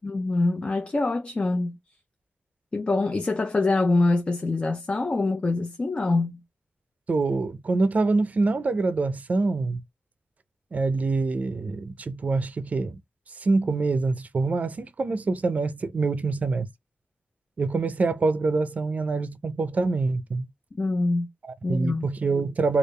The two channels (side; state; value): both; normal; correlation 0.90